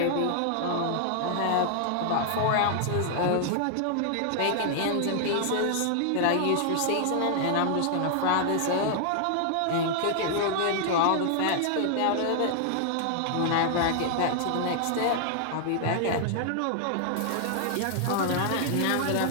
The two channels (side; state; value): both; different; correlation -0.01